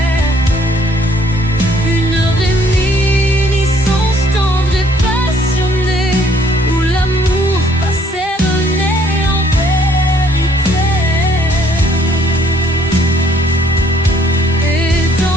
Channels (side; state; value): both; normal; correlation 0.63